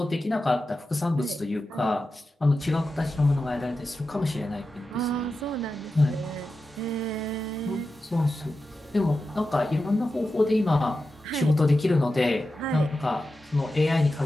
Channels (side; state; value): both; normal; correlation 0.92